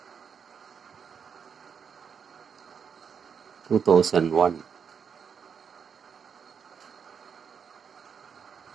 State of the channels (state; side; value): quieter; left; 6.8 dB